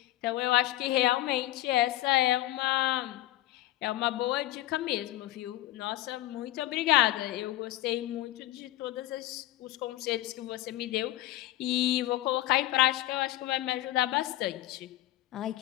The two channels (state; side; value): quieter; right; 16.3 dB